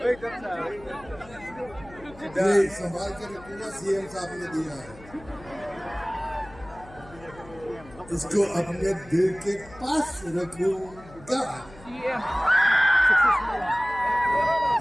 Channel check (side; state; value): left; noise; hum, 20 dB below the sound